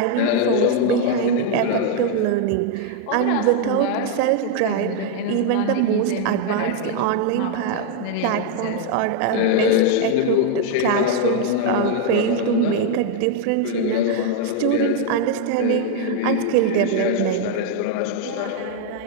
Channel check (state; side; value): different; both; correlation 0.01